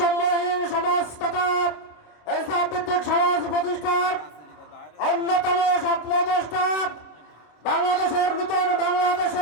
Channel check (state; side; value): late; right; 26 ms